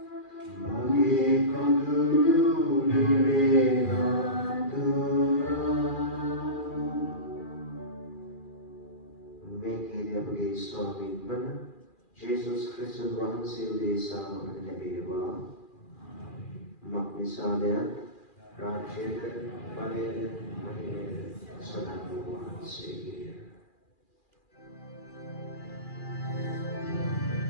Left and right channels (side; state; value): right; late; 2.4 ms